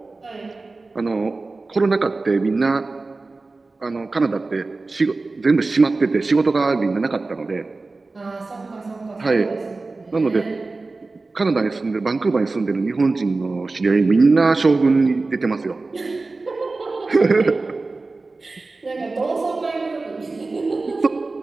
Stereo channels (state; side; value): quieter; left; 3.6 dB